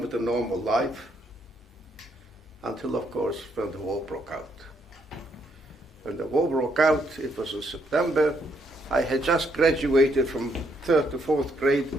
with a normal life until, of course, when the war broke out. When the war broke out, it was in September. I had just graduated from 3rd to 4th grade,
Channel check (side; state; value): both; normal; correlation 0.74